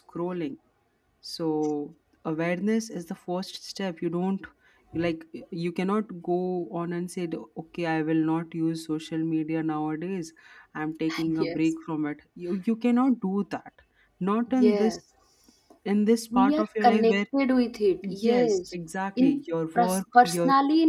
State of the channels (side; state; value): both; identical; correlation 1.00